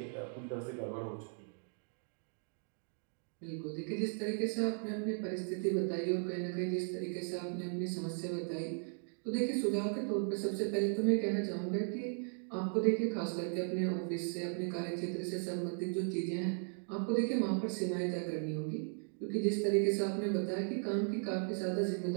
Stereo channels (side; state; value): left; silent; 53 dB below the other